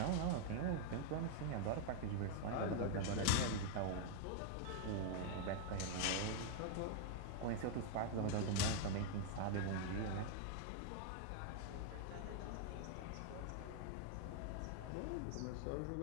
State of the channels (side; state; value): both; different; correlation 0.00